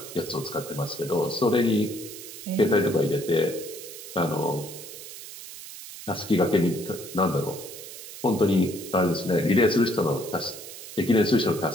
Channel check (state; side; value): noise; right; hiss, 13 dB below the sound